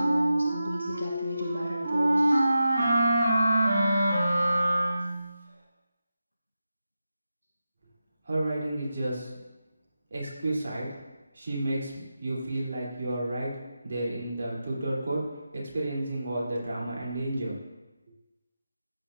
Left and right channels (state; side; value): inverted; both; correlation -0.90